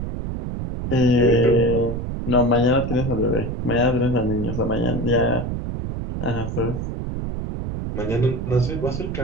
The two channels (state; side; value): noise; right; rumble, 4 dB below the sound